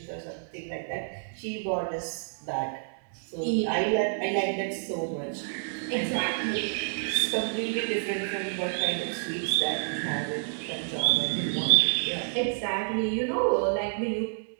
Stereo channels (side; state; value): left; silent; digital silence